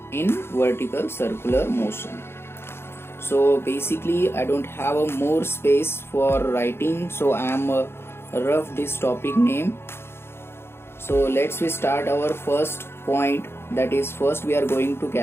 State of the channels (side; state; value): right; late; 0.12 ms